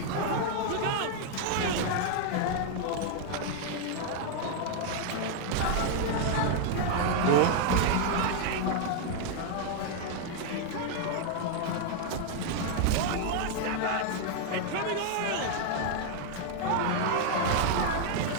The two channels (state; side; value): different; both; correlation 0.00